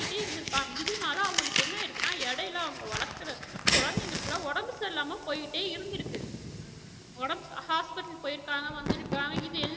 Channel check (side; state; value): both; identical; correlation 1.00